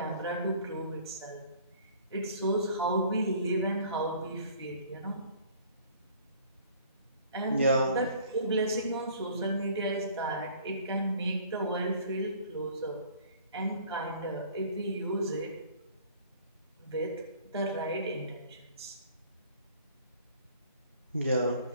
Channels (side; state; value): both; inverted; correlation -0.52